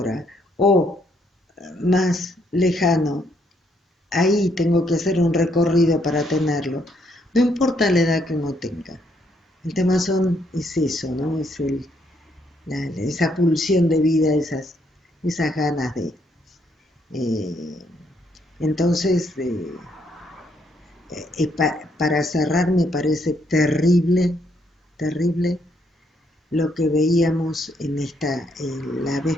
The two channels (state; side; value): normal; both; correlation 0.72